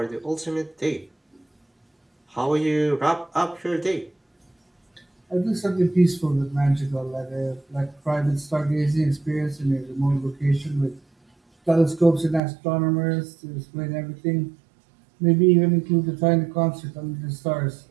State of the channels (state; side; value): drops out; left; at 12.4 s